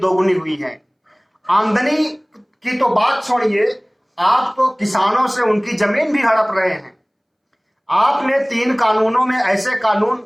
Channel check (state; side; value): identical; both; correlation 1.00